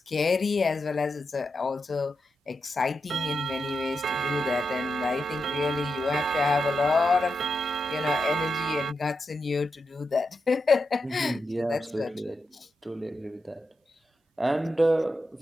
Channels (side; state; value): both; normal; correlation 0.87